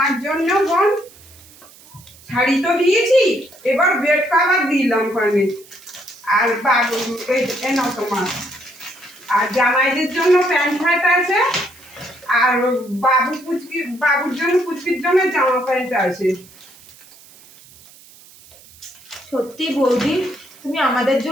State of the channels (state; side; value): noise; right; hiss, 23 dB below the sound